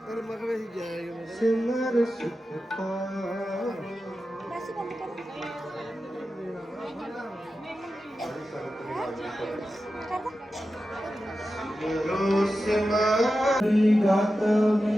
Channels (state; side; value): normal; both; correlation 0.92